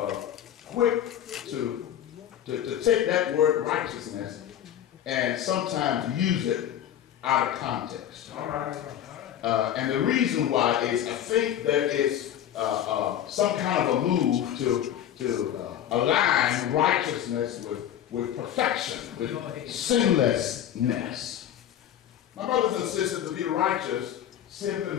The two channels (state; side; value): quieter; right; 10.7 dB